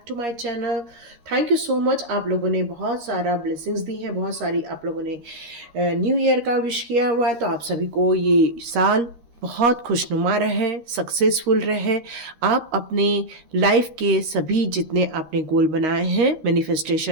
to my channel. Thank you so much. आप लोगों ने बहुत सारा ब्लेसिंग्स दी है, बहुत सारी आप लोगों ने न्यू ईयर का विश किया हुआ है। तो आप सभी को ये साल बहुत खुशनुमा रहे, सक्सेसफुल रहे। आप अपने लाइफ के सभी जितने आपने गोल बनाए हैं,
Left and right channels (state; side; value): late; left; 13 ms